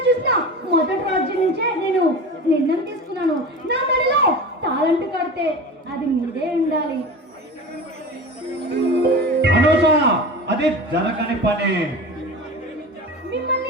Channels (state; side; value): normal; both; correlation 0.31